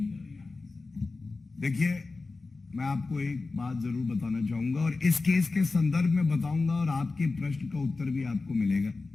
देखिए, मैं आपको एक बात जरूर बताना चाहूंगा और इस केस के संदर्भ में बताऊंगा और आपके प्रश्न का उत्तर भी आपको मिलेगा।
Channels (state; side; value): quieter; right; 3.7 dB